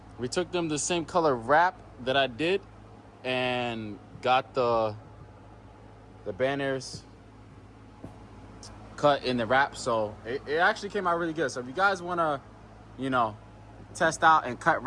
the same color wrap that I did and got the banners cut in the wrap. So it actually came out really good. So if you guys want to, test out and cut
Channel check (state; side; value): identical; both; correlation 1.00